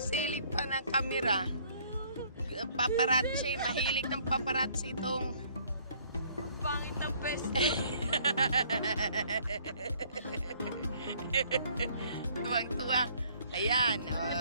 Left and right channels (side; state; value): both; inverted; correlation -0.60